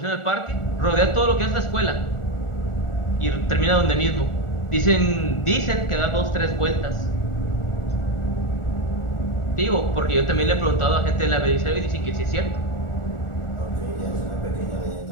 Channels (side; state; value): right; late; 1.4 ms